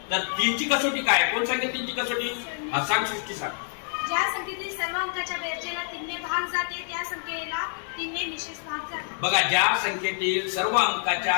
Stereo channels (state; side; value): silent; right; digital silence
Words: तर 3 ची कसोटी काय? कोण सांगेल 3 ची कसोटी? हा सांग सृष्टी सांग. ज्या संख्येतील सर्व अंकाच्या बेरजेला 3 ने भाग जाते त्या संख्येला 3 ने निश्चित भाग जातो. बघा, ज्या संख्येतील सर्व अंकाच्या